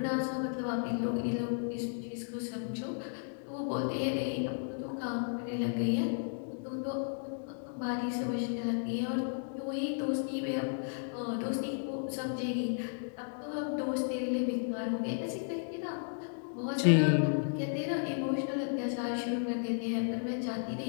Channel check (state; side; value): silent; right; digital silence